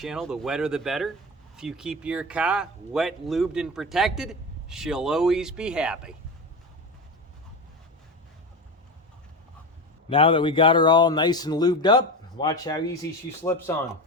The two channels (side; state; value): both; normal; correlation 0.23